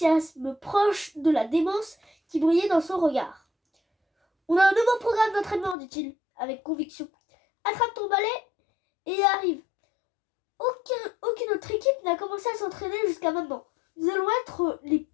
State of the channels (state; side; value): drops out; right; at 5.8 s